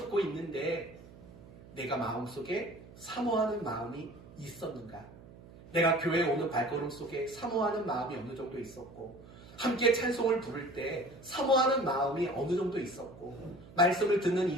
있는데 내가 마음속에 사모하는 마음이 있었는가? 내가 교회에 오는 발걸음 속에 사모하는 마음이 어느 정도 있었고 함께 찬송을 부를 때 사모하는 마음이 어느 정도 있었고 말씀을 듣는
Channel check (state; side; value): noise; right; hum, 20 dB below the sound